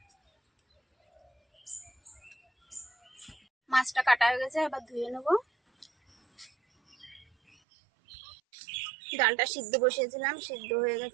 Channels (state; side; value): drops out; left; at 7.6 s